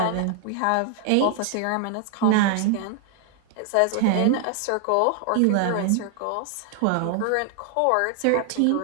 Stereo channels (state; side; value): different; both; correlation 0.00